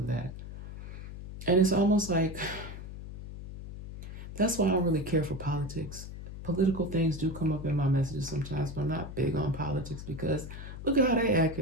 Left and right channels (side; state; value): left; noise; hum, 11 dB below the sound